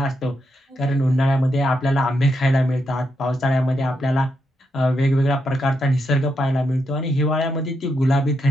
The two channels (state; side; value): normal; both; correlation 0.82